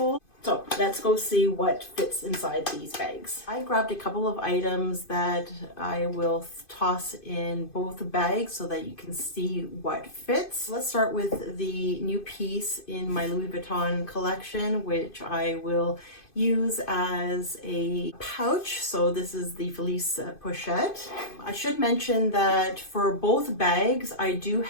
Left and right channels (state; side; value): late; right; 2.5 ms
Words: So let's go see what fits inside these bags. I grabbed a couple of items that I will toss in both bags so that you can see what fits. Let's start with the new piece in my Louis Vuitton collection, which I will use as a pouch. So this is the Felice Pochette. I should mention that for both bags, I do